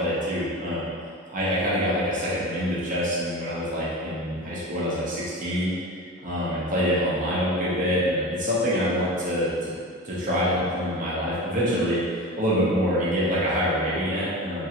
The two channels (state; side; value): normal; both; correlation 0.29